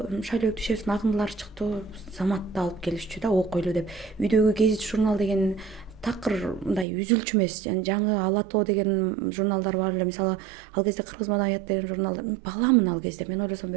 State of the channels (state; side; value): drops out; left; at 6.9 s